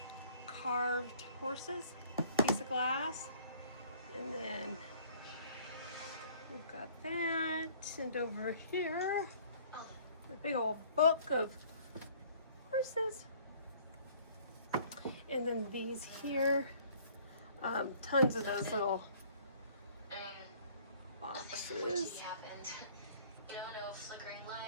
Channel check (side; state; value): both; inverted; correlation -0.55